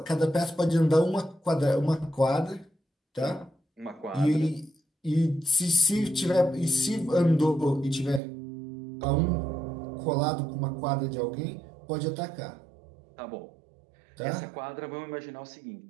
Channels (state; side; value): drops out; left; at 8.2 s